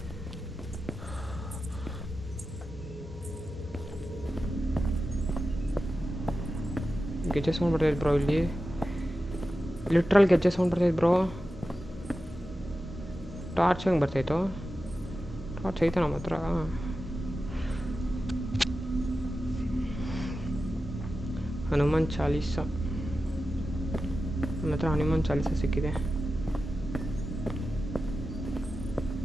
ಗೆಜ್ಜೆ ಸೌಂಡ್ ಬರ್ತೈತೆ ಬ್ರೋ ಇಲ್ಲಿ ಲಿಟ್ರಲ್ ಗೆಜ್ಜೆ ಸೌಂಡ್ ಬರ್ತೈತೆ ಬ್ರೋ ಟಾರ್ಚ್ ಹೆಂಗೆ ಬರ್ತೈತೋ ಟಾರ್ಚ್ ಐತೆ ನಮ್ಮ ಹತ್ರ ಹನುಮಾನ್ ಚಾಲೀಸ ನಮ್ಮ ಹತ್ರ ಹನುಮಾನ್ ಚಾಲೀಸ ಸಿಕ್ಕಿದೆ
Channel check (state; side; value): normal; both; correlation 0.92